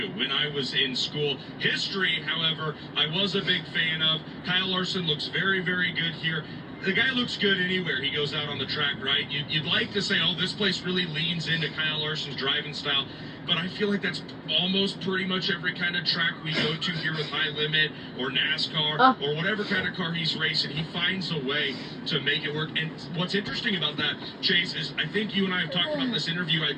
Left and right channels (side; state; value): both; identical; correlation 1.00